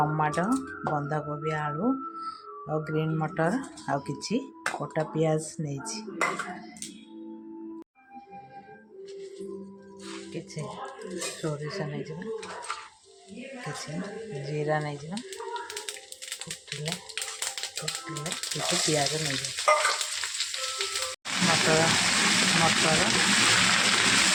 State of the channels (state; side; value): identical; both; correlation 1.00